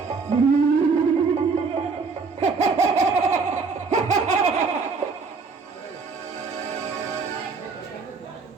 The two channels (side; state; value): left; quieter; 4.7 dB